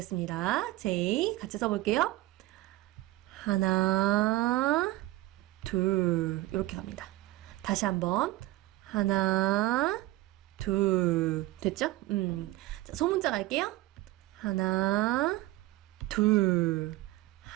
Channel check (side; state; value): left; quieter; 18.3 dB